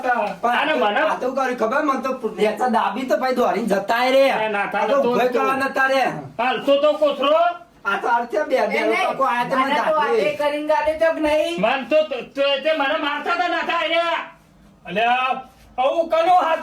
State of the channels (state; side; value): identical; both; correlation 1.00